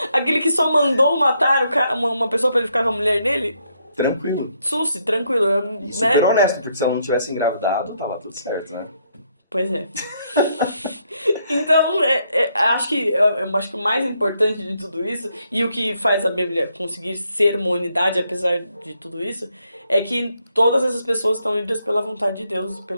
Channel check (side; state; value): both; inverted; correlation -0.75